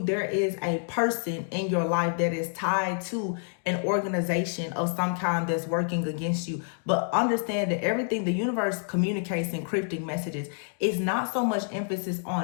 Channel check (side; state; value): right; silent; 59 dB below the other